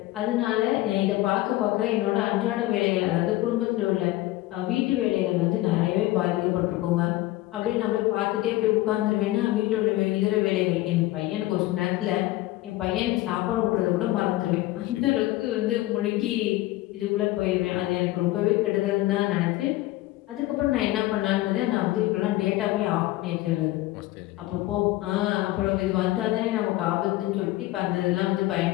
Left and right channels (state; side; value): quieter; right; 17.3 dB